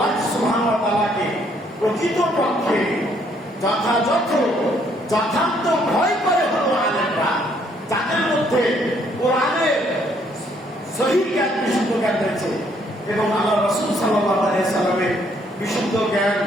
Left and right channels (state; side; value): normal; both; correlation 0.67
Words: সুবহানাহু ওয়া তাআলাকে প্রকৃত পক্ষে যথার্থ ভয় করে হলো আলেমরা, যাদের মধ্যে কোরআনের সহিহ জ্ঞান, বিশুদ্ধ জ্ঞান রয়েছে, এবং আল্লাহ রাসূল সাল্লাল্লাহু আলাইহি সাল্লামের বিশুদ্ধ জ্ঞান